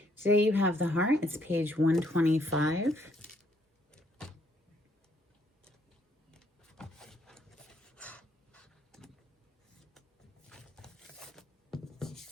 Today you have the heart. It's page 125.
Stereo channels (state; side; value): normal; both; correlation 0.70